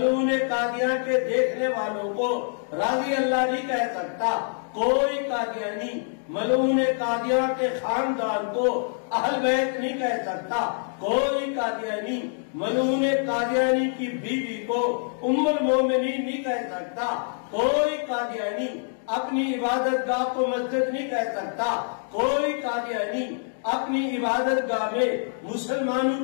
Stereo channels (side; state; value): right; silent; digital silence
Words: قادیاں کے دیکھنے والوں کو رضی اللہ نہیں کہہ سکتا، کوئی قادیانی ملعون قادیاں کے خاندان کو اہل بیت نہیں کہہ سکتا، کوئی قادیانی ملعون قادیانی کی بیوی کو ام المومنین نہیں کہہ سکتا، کوئی قادیانی اپنی عبادت گاہ کو مسجد نہیں کہہ سکتا، کوئی قادیانی اپنی عبادت گاہ میں